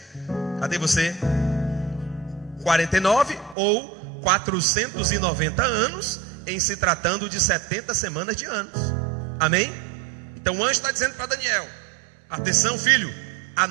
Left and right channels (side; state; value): left; drops out; at 3.6 s